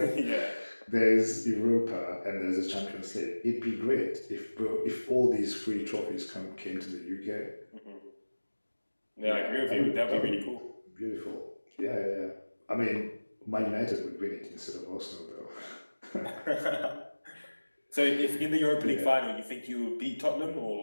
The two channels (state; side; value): inverted; both; correlation -1.00